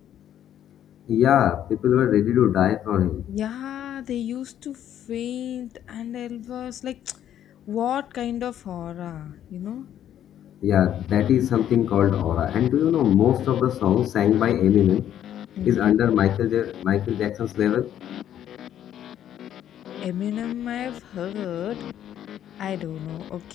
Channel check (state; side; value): quieter; right; 10.8 dB